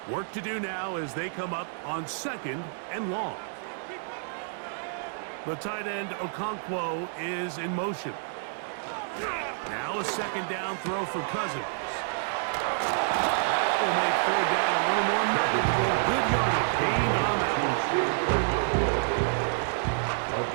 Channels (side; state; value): left; silent; 59 dB below the other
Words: Work to do now as they come up on second and long. The tight end Okonkwo is in motion. Now a second down throw for Cousins. That will make third down a little more manageable. Good yardage gain on that one. A